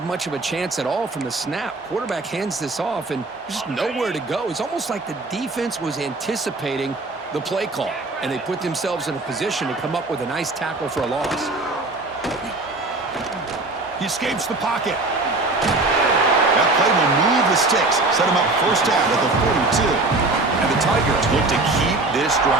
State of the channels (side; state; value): left; quieter; 3.2 dB